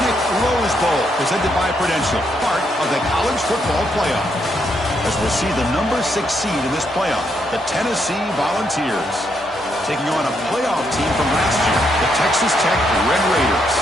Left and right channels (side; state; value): both; normal; correlation 0.77